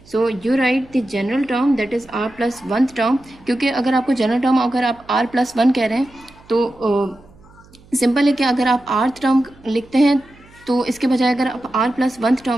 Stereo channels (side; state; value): right; noise; hum, 26 dB below the sound